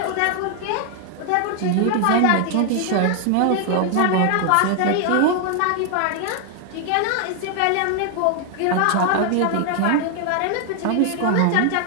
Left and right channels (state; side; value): different; both; correlation 0.00